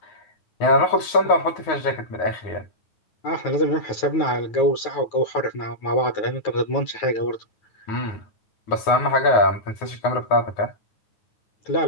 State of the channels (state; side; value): late; right; 9.5 ms